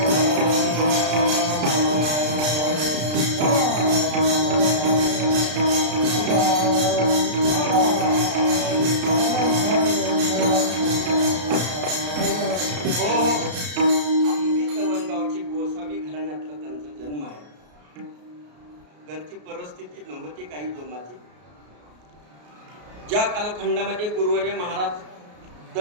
घरची परिस्थिती नव्हती काही जोमाची. ज्या कालखंडामध्ये गुरुवर्य महाराज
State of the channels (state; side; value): late; left; 33 ms